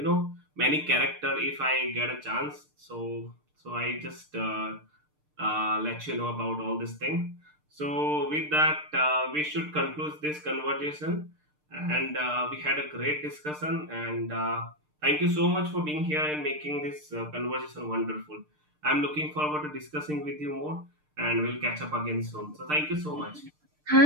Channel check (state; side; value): late; left; 6.6 ms